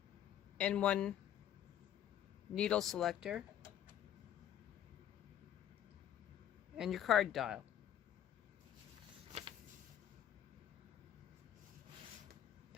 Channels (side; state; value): right; quieter; 10.7 dB